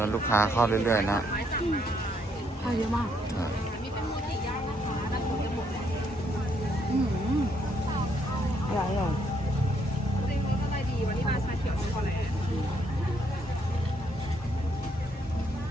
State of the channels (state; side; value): normal; both; correlation 0.72